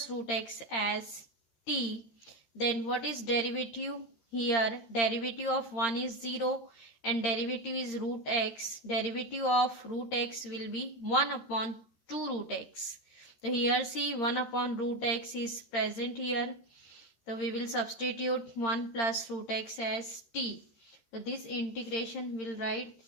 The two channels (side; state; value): right; late; 13 ms